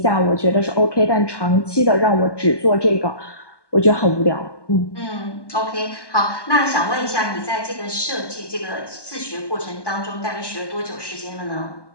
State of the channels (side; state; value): right; late; 1.2 ms